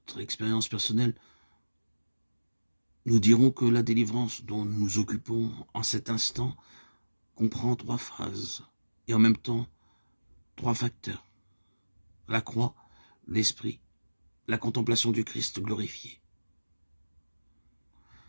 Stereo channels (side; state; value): both; inverted; correlation -1.00